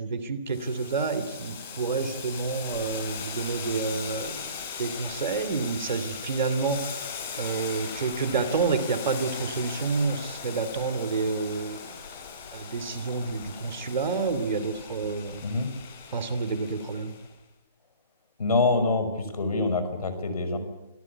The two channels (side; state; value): both; inverted; correlation -0.46